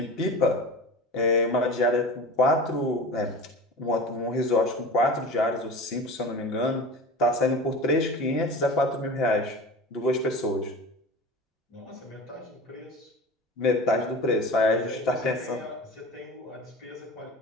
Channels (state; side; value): normal; both; correlation 0.34